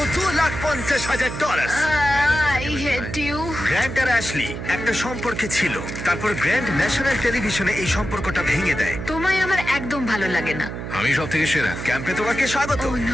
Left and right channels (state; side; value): noise; right; hum, 7 dB below the sound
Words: $2,50,000। I hate you. গ্র্যান্ট আর অ্যাশলি একটা সম্পর্কে ছিল, তারপর গ্র্যান্ট ন্যাশনাল টেলিভিশনে এই সম্পর্কটা ভেঙে দেয়। তোমায় আমার একদম ভালো লাগে না। আমি সব থেকে সেরা। ক্যাম্পে তোমাকে স্বাগত। ও